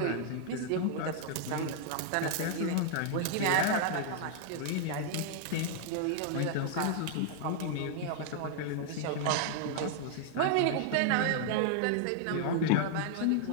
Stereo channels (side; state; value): both; different; correlation 0.00